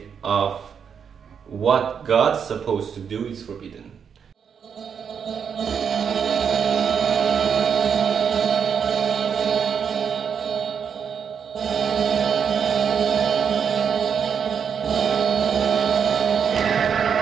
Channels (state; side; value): quieter; left; 7.2 dB